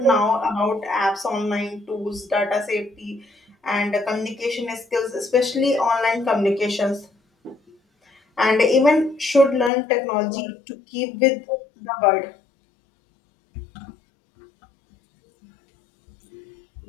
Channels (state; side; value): drops out; right; at 9.7 s